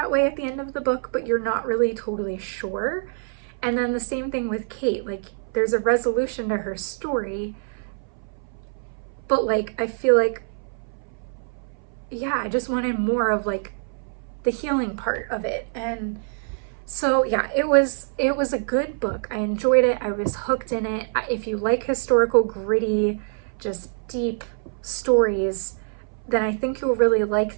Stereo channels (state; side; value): silent; left; 61 dB below the other